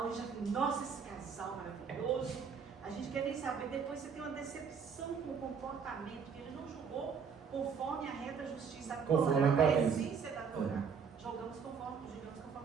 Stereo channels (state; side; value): quieter; left; 6.3 dB